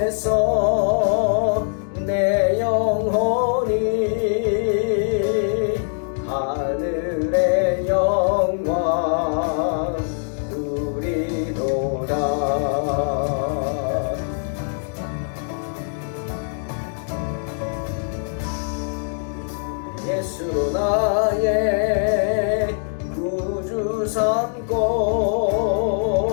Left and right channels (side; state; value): right; silent; 64 dB below the other